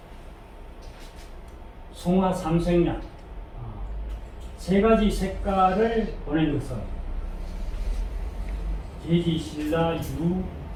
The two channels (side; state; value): both; identical; correlation 1.00